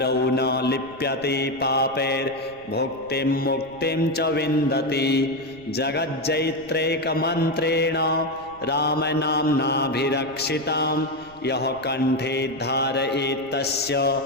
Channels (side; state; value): right; noise; rumble, 25 dB below the sound